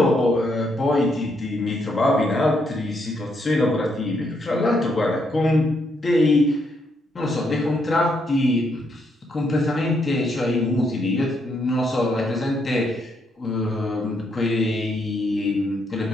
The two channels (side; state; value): both; normal; correlation 0.76